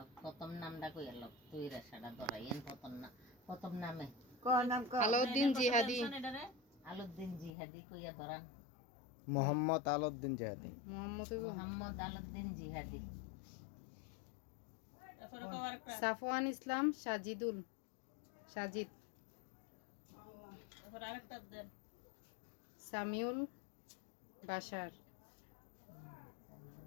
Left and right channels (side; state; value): right; drops out; at 7.5 s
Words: প্রথম নামটা কইল তুই রেশাটা ধরাইয়েন প্রথম নামে আলাউদ্দিন জিহাদি আলাউদ্দিন জিহাদি কইয়া ধরান মোহাম্মদ আলাউদ্দিন জিহাদি মোহাম্মদ আলাউদ্দিন জিহাদি সাফওয়ান ইসলাম সাজিদ সামিউল বাশার